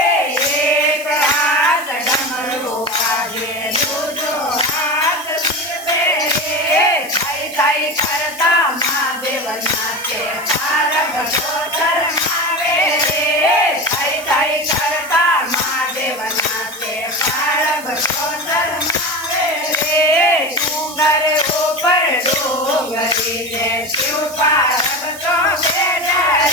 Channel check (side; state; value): right; noise; hiss, 15 dB below the sound